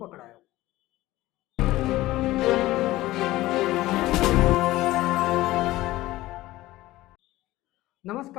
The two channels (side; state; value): right; quieter; 17.2 dB